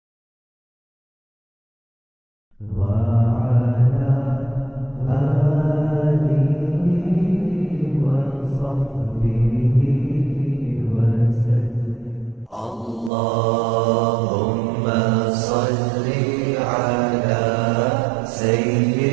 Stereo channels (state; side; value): drops out; left; at 13.1 s